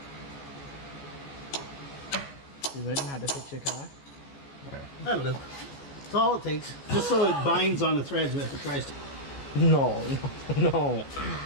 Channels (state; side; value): late; right; 14 ms